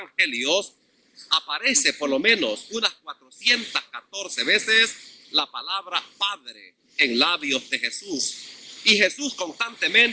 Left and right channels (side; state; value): both; identical; correlation 1.00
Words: aparece por lo menos unas 414 veces la palabra Padre en labios de Jesús. Y Jesús